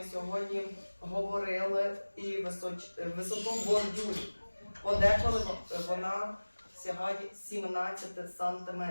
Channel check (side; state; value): both; inverted; correlation -1.00